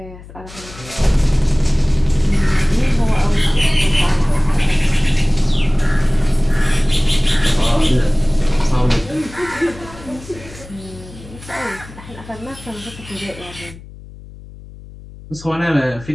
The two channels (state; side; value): noise; left; hum, 18 dB below the sound